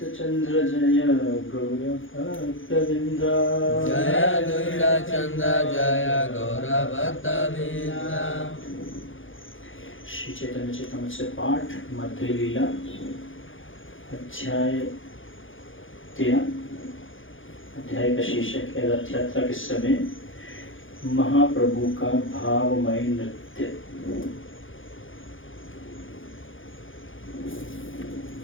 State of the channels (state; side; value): late; right; 0.58 ms